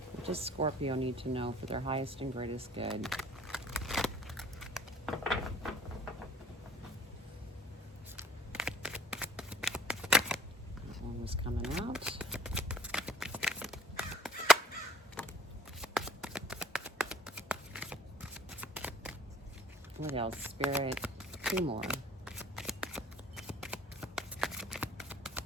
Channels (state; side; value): normal; both; correlation 0.54